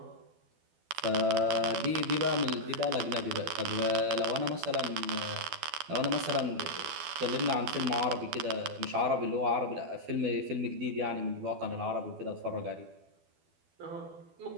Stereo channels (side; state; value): left; late; 12 ms